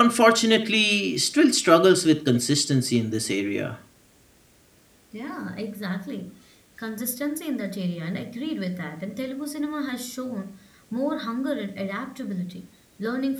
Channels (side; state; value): both; identical; correlation 1.00